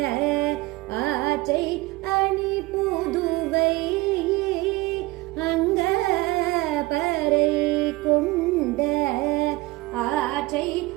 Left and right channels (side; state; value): left; quieter; 21.0 dB